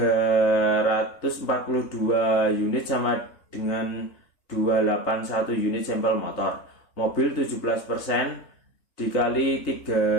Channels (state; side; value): late; right; 3.8 ms